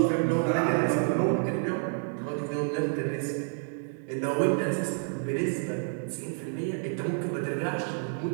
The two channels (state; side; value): silent; left; 59 dB below the other